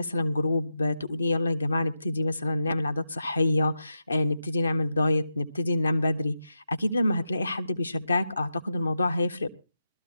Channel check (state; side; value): inverted; both; correlation -0.89